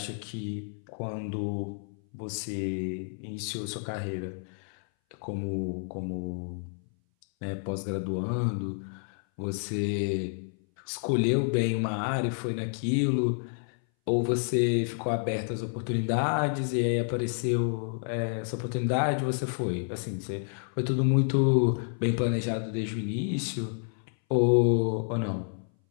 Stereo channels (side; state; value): right; silent; 58 dB below the other